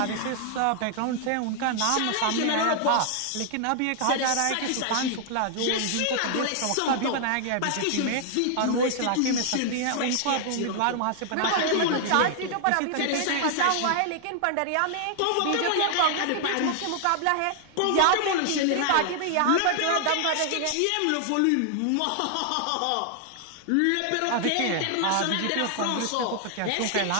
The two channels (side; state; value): both; different; correlation 0.00